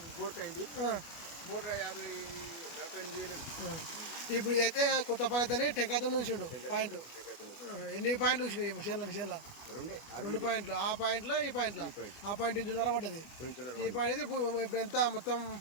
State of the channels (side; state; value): right; late; 25 ms